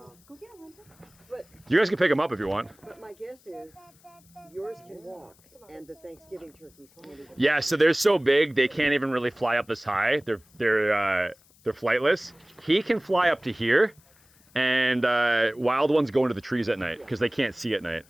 But, You guys can pick him up if you want. but my guess is yours can walk and the Thanksgiving turkeys can't even. Yeah, so they're so big, they can't even really fly up this high. They're flightless. He can fly up to here, and wild ones go into the trees at night because they can't see at night.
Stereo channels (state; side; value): noise; left; hiss, 30 dB below the sound